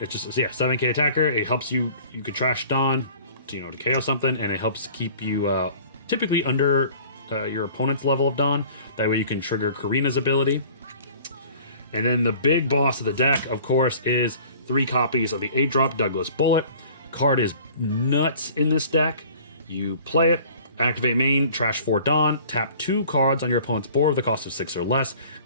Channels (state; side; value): inverted; both; correlation -0.48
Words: it's just, yeah, 7k attacker. It helps you could trash Don to KO something, and it helps keep you typically under your opponent's level of Don. That way you can trigger Karina's ability. And then the big boss of the deck, of course, is 3 copies of the 8-drop Douglas Bullet. Card is nuts in this deck. You play it, activate main, trash 4 Don, tap 2 cards on your opponent's board with a cost of 6 or less,